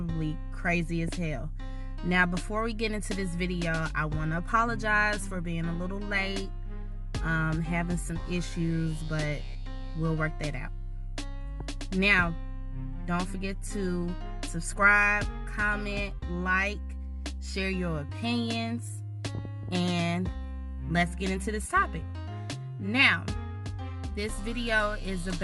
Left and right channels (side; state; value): both; identical; correlation 1.00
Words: crazy as hell. Now, before we get into this video, I want to apologize for being a little late, having some issues, but we'll work that out. Now, don't forget to subscribe, comment, like, share your opinions, and let's get into this topic. Now, this video is